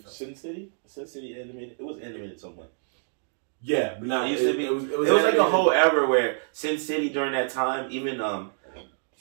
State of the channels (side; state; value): left; silent; digital silence